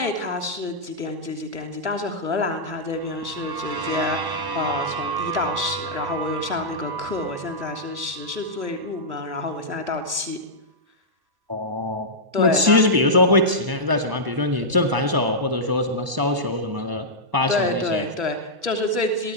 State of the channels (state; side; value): late; left; 1.0 ms